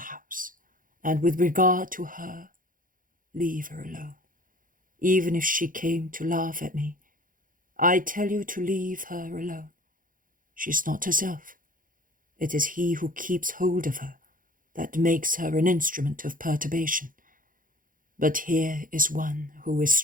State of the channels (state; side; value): late; left; 0.40 ms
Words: and with regard to her, leave her alone. Even if she came to laugh at me, I tell you to leave her alone. She's not herself. It is he who keeps hold of her that makes her an instrument of perturbation. But here is one who is